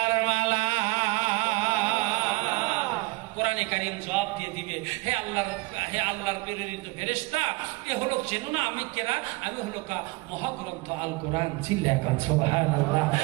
মালা। কোরআনে কারীম জবাব দিয়ে দিবে, হে আল্লাহর প্রেরিত ফেরেশতা, এ হলো চেনো না আমি কেরা? আমি হলো মহাগ্রন্থ আল কোরআন। চিল্লাকান সুবহানাল্লাহ।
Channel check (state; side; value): quieter; left; 23.6 dB